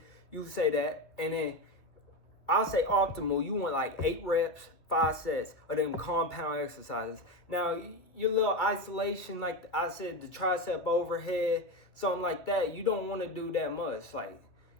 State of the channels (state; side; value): late; right; 2.3 ms